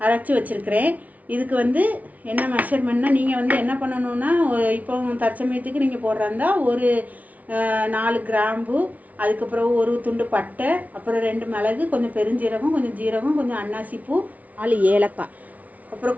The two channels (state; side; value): late; left; 0.072 ms